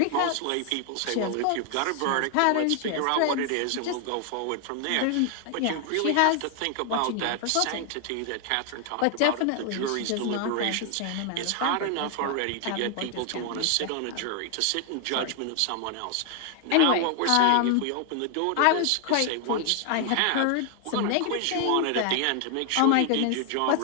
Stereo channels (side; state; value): both; different; correlation 0.00